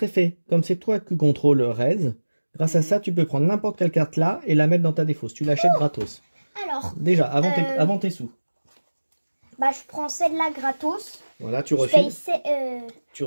effet. Comme c'est toi qui contrôle Rez, grâce à ça, tu peux prendre n'importe quelle carte là et la mettre dans ta défausse. Tu l'achètes gratos. Alors, Déjà, avant tes sous. bah, je prends celle-là gratos. Voilà, tu Je refiles. paye Tu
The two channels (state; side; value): inverted; both; correlation -1.00